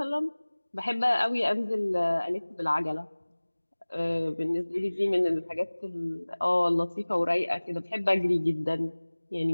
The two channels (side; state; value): both; inverted; correlation -1.00